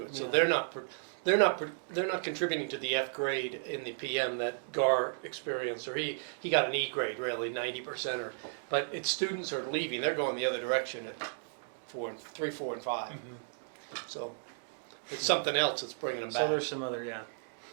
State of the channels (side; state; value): left; silent; digital silence